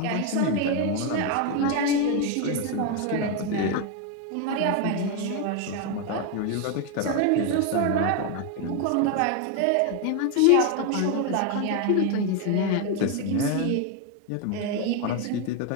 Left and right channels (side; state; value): both; different; correlation 0.01